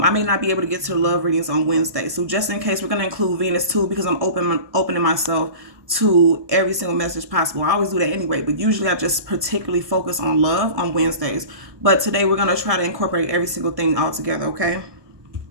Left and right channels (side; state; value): left; late; 1.2 ms